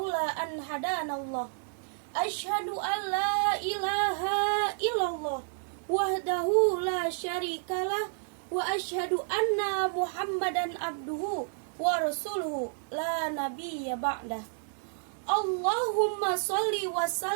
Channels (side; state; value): left; silent; digital silence